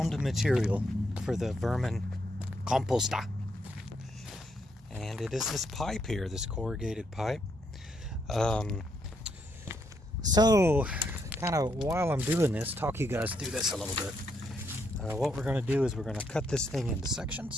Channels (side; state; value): both; normal; correlation 0.76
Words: material for the vermin composter, and it is this pipe here, this corrugated pipe. So kind of while I'm doing this, talk you guys through this a little bit. What we're going to do is we're going to cut this thing into